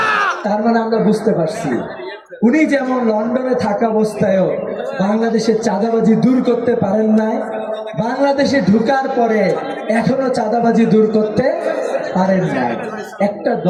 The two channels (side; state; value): both; identical; correlation 1.00